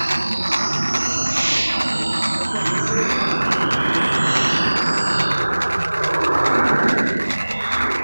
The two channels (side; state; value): both; inverted; correlation -1.00